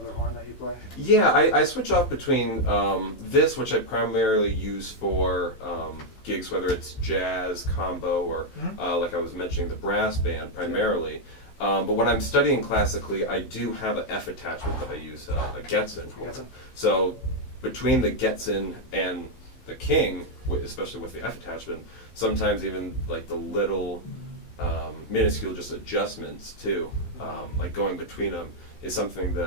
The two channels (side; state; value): right; late; 16 ms